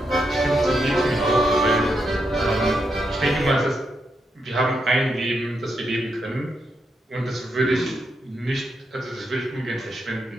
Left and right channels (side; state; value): both; normal; correlation 0.82